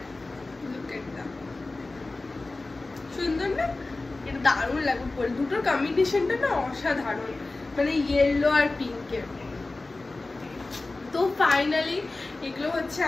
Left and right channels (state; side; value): quieter; right; 3.2 dB